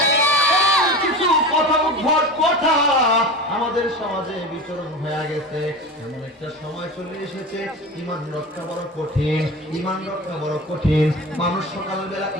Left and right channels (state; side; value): normal; both; correlation 0.31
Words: কিছু কথা উদ্ভট কথা আমাদের সমাজে বিচরণ হয়ে গেছে। এমন একটা সময় চলে এসেছে, ঈমান রক্ষা বড় কঠিন, ঈমান রক্ষা বড় কঠিন। মানুষ সকালবেলা